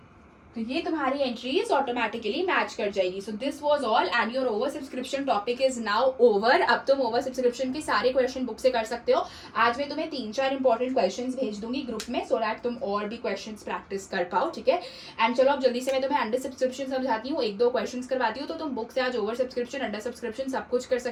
तो ये तुम्हारी एंट्रीज ऑटोमेटिकली मैच कर जाएगी। So this was all and your over subscription topic is now over. अब तुम ओवर सब्सक्रिप्शन के सारे क्वेश्चन बुक से कर सकते हो। आज मैं तुम्हें 3-4 इंपॉर्टेंट क्वेश्चंस भेज दूंगी ग्रुप में, सो दैट तुम और भी क्वेश्चंस प्रैक्टिस कर पाओ। ठीक है, एंड चलो अब जल्दी से मैं तुम्हें अंडर सब्सक्रिप्शन समझाती हूँ, 1-2 क्वेश्चंस करवाती हूँ, तो तुम बुक से आज ओवर सब्सक्रिप्शन, अंडर सब्सक्रिप्शन सब कुछ कर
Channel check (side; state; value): both; identical; correlation 1.00